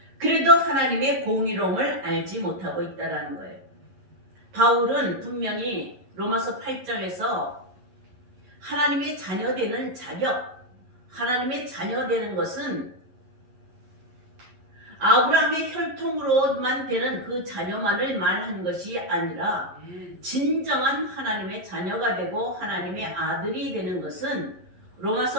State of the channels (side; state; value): left; late; 11 ms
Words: 그래도 하나님의 공의로움을 알지 못하고 있다는 거예요. 바울은 분명히 로마서 8장에서 하나님의 자녀되는 자격, 하나님의 자녀되는 것은 아브라함의 혈통으로만 되는 그 자녀만을 말한 것이 아니라 진정한 하나님의 자녀가 되고 하나님의 아들이 되는 것은